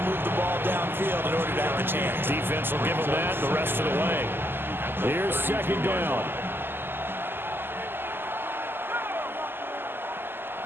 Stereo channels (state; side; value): late; left; 0.10 ms